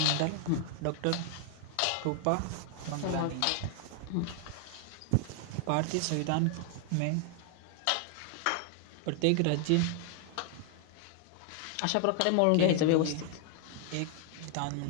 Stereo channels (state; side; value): different; both; correlation 0.00